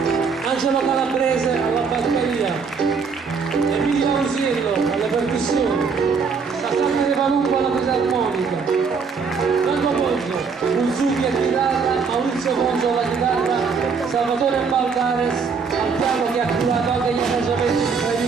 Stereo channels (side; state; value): left; quieter; 5.4 dB